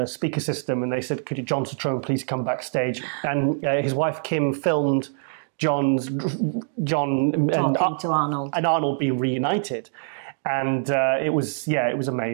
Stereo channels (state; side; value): silent; left; digital silence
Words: speaker system, and they said, could John Citrone please come backstage? And his wife Kim filmed John talking to Arnold, and Arnold being reunited, and it was